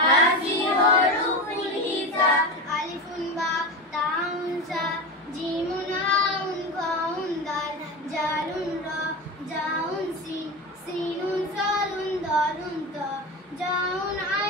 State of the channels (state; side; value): normal; both; correlation 0.23